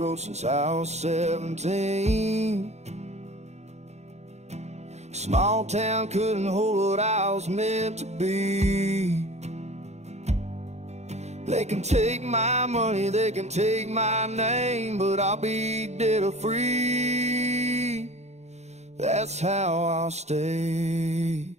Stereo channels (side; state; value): left; late; 0.32 ms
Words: road since I was 17. Small town couldn't hold what I was meant to be. They can take my money, they can take my name, but I'll be dead or free. That's how I'll stay.